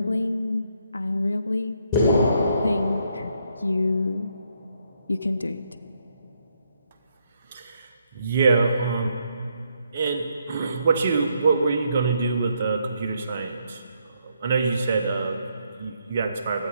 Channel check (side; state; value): both; inverted; correlation -0.75